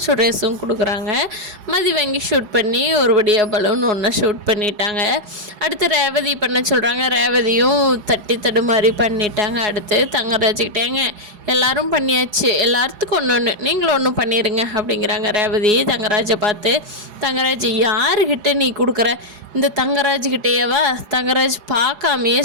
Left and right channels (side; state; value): left; late; 4.8 ms